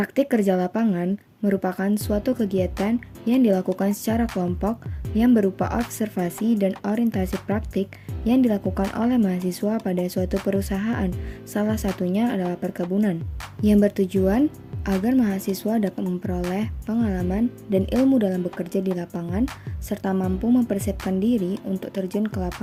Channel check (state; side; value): identical; both; correlation 1.00